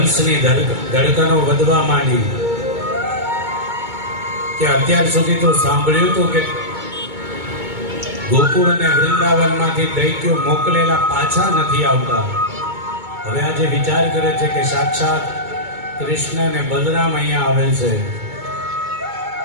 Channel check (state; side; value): late; left; 2.2 ms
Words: ધડકનો વધવા માંડી કે અત્યાર સુધી તો સાંભળ્યું હતું કે ગોકુળ અને વૃંદાવનમાંથી દૈત્યો મોકલેલા પાછા નથી આવતા. હવે આજે વિચાર કરે છે કે સાક્ષાત કૃષ્ણ અને બલરામ અહીંયા આવેલ છે